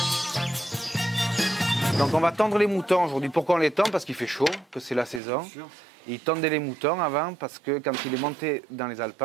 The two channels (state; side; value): drops out; left; at 5.2 s